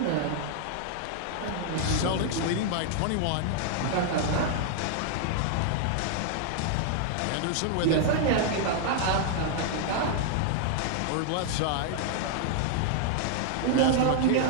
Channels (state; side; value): different; both; correlation -0.01